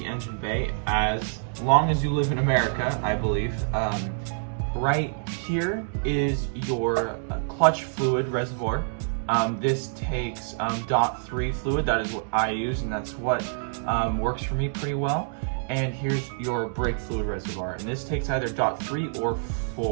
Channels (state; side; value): silent; left; digital silence